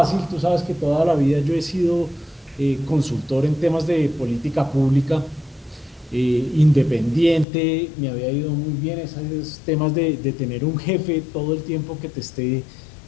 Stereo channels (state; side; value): drops out; right; at 7.5 s